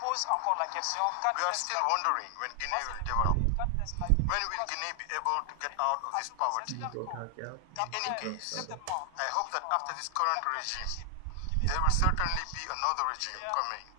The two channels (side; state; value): both; different; correlation 0.00